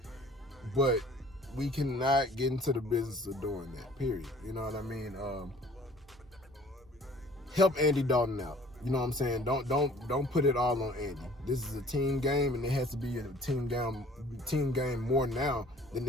But we cannot get into the business of doing that, period. You know what I mean? Help Andy Dalton out. You know what I'm saying? Don't put it all on Andy. This is a team game, and it has to be a team game more now than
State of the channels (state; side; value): normal; both; correlation 0.52